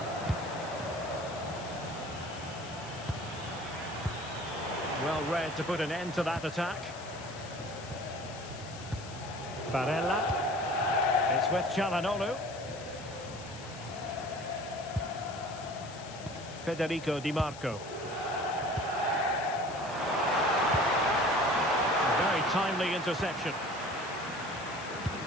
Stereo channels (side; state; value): left; noise; hiss, 16 dB below the sound